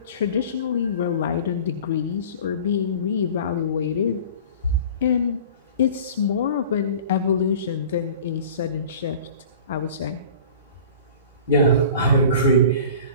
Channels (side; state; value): both; inverted; correlation -0.42